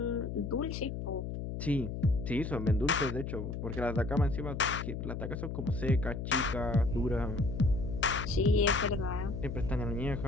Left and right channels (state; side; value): noise; left; hum, 5 dB below the sound